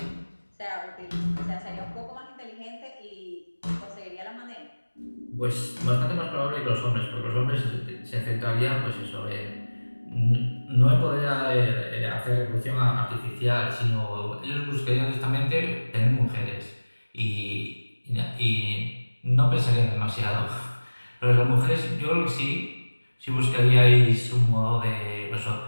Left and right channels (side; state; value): both; inverted; correlation -1.00